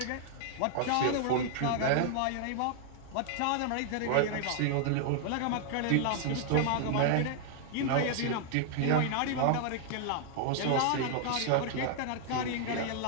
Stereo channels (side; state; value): both; different; correlation 0.00